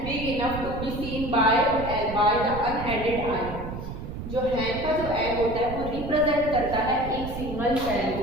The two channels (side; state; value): right; noise; rumble, 8 dB below the sound